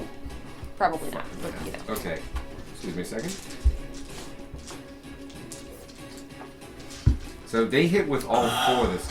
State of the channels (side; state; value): both; identical; correlation 1.00